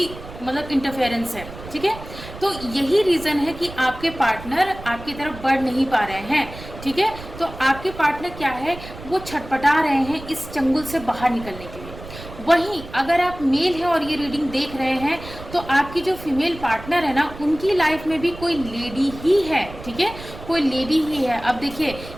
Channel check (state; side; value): noise; right; rumble, 14 dB below the sound